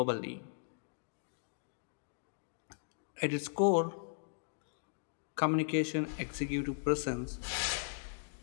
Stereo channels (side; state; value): right; silent; digital silence